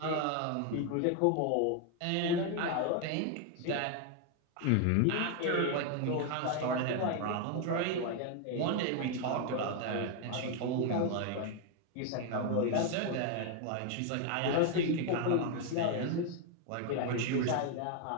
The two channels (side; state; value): both; different; correlation 0.01